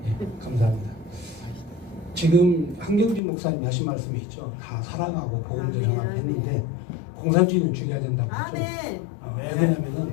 감사합니다. 지금 한경진 목사님 하신 말씀이 있죠. 다 사랑하고 복음도 전하고 했는데 공산주의는 죽여야 된다고 했죠. 왜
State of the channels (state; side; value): drops out; right; at 3.2 s